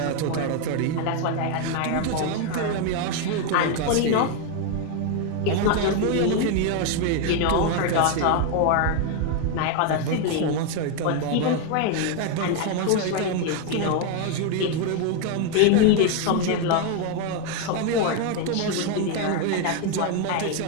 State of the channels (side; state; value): both; different; correlation 0.01